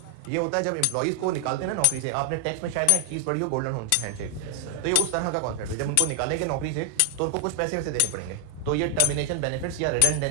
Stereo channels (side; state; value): both; different; correlation 0.00